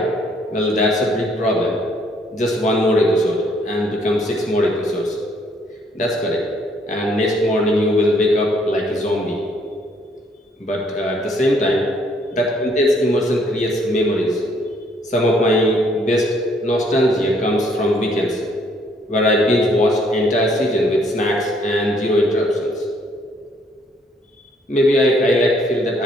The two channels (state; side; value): normal; both; correlation 0.66